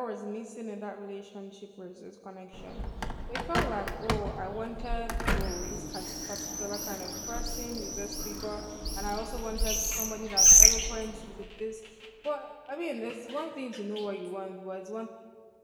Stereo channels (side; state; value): both; identical; correlation 1.00